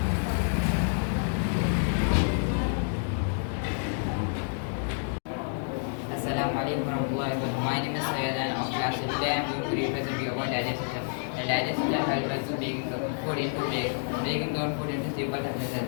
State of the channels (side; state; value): right; silent; digital silence